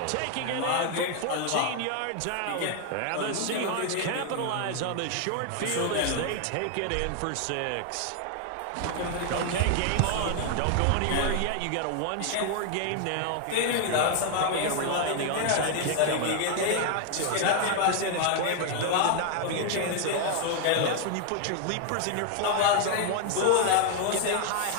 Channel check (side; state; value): both; different; correlation 0.00